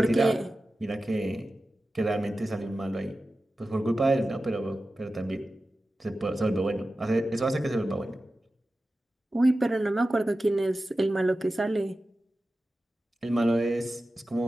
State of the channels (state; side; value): normal; both; correlation 0.94